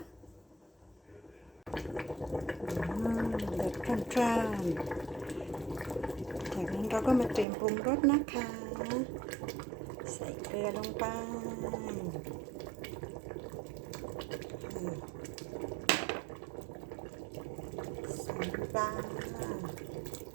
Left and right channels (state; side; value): drops out; left; at 7.5 s